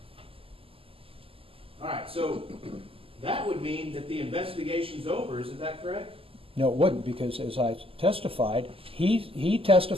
All right, so that would mean that the investigation's over, isn't that correct? No, it wouldn't, because as I testified, he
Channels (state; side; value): late; left; 0.27 ms